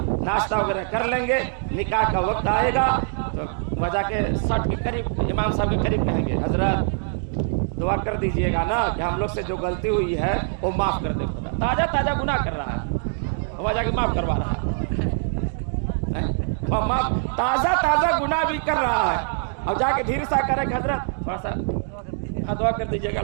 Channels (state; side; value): silent; left; digital silence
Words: ناشتہ وغیرہ کر لیں گے، نکاح کا وقت آئے گا تو وجہ کے سٹ کے قریب امام صاحب کے قریب کہیں گے حضرت دعا کر دیجئے گا نا کہ ہم لوگ سے جو غلطی ہوئی ہے وہ معاف کر دے خدا، تازہ تازہ گناہ کر رہا ہے، وجہ کے معاف کروا رہا ہے، تازہ تازہ گناہ بھی کر رہا ہے، اور جا کے دھیر سا کرے کہ حضرت تھوڑا سا دعا کر دیجئے گا